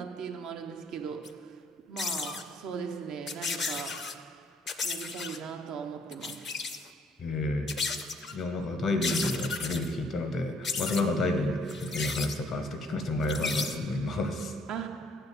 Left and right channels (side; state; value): both; normal; correlation 0.64